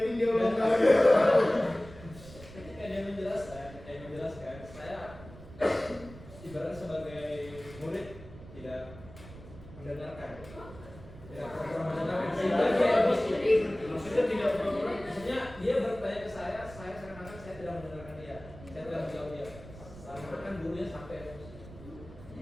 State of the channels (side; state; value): right; noise; rumble, 17 dB below the sound